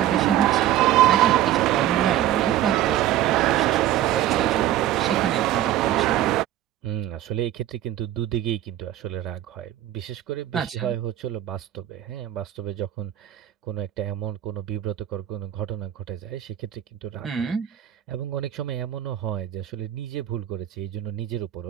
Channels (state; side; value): quieter; left; 12.6 dB